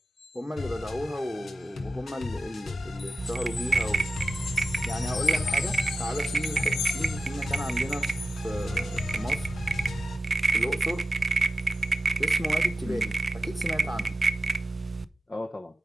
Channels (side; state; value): both; normal; correlation 0.93